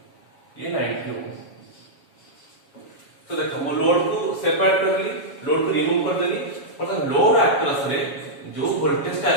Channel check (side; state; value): right; late; 7.3 ms